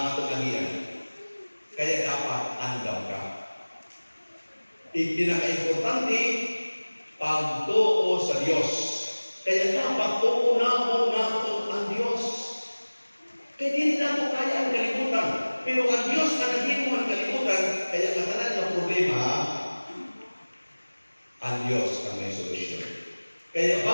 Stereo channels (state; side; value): inverted; both; correlation -1.00